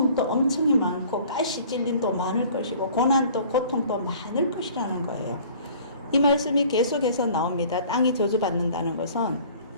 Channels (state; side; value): inverted; both; correlation -0.50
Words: 엄청이 많고 가시 찔림도 많을 것이고 고난도 고통도 많을 것이라는 거예요. 이 말씀이 계속해서 나옵니다. 땅이 저주받는다는 것은